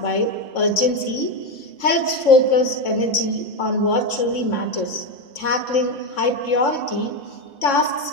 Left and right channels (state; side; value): late; right; 3.6 ms